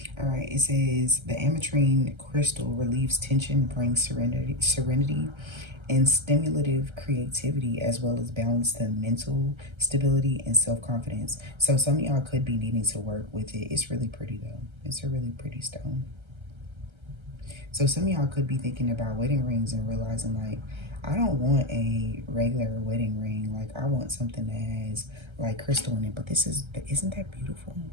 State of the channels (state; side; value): late; left; 1.3 ms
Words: All right, it says the ametrine crystal relieves tension, brings serenity, and stimulative creativity, as well as balance to mental stability and self-confidence. So some of y'all could be needing to work with it. It's really pretty though. It's a really pretty stone. So some of y'all could be thinking about wedding rings and realizing, like, I don't want a regular wedding ring. Like, I want something that has like crystal in it. But this is, isn't that beautiful?